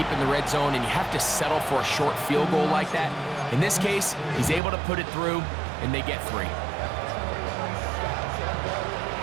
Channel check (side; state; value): left; drops out; at 4.6 s